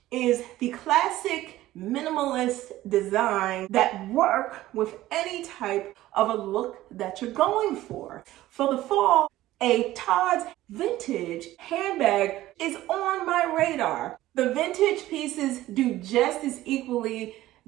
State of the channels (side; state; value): left; quieter; 15.6 dB